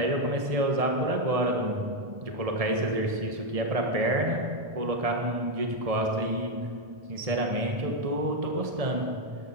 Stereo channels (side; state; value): left; late; 1.7 ms